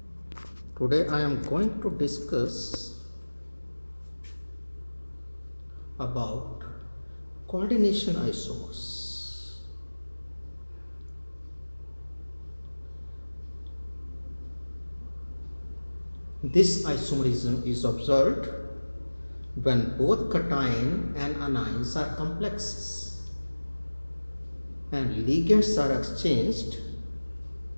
Today, I am going to discuss about coordination isomers. This isomerism is observed when both cation and anions are complexes and ligands are exchanged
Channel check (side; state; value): both; inverted; correlation -1.00